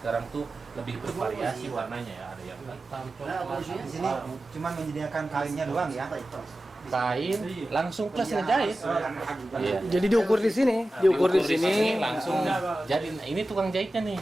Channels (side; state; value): both; normal; correlation 0.94